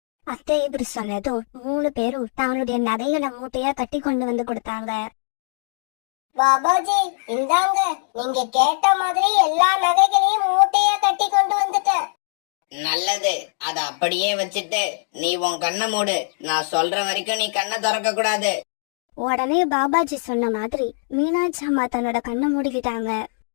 அத்தை இப்படி சொன்னதும் 3 பேரும் தங்களுடைய நகைகளை மூட்டையா கட்டி கொண்டு வந்து கொடுத்தாங்க. பாபாஜி, இந்தாங்க, நீங்க கேட்ட மாதிரி எல்லா நகைகளையும் மூட்டையா கட்டி கொண்டு வந்துட்டேன். நல்லது. அத அப்படியே வச்சுட்டு நீ உன் கண்ணை மூடு. நான் சொல்ற வரைக்கும் நீ கண்ணை திறக்க கூடாது. உடனே பாபாஜி சொன்ன மாதிரி மீனாட்சி அம்மா தன்னோட கண்ணை மூடிக்கிட்டாங்க.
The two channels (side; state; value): right; silent; digital silence